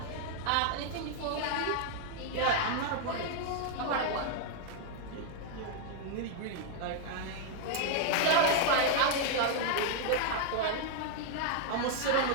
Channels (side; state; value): both; different; correlation 0.00